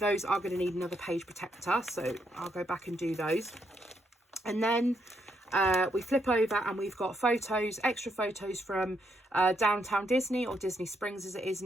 are going to need another page protector. So I'll go back and do those. And then we flip over and we've got photos, extra photos from Downtown Disney, or Disney Springs as it is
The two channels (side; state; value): both; normal; correlation 0.77